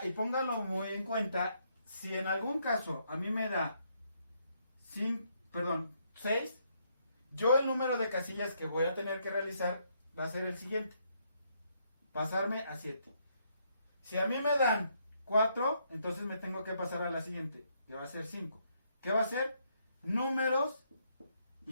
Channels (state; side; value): inverted; both; correlation -0.73